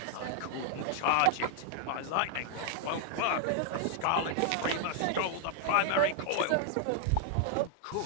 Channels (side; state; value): both; different; correlation 0.00